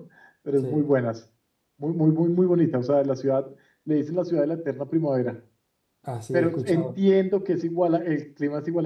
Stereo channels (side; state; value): both; identical; correlation 1.00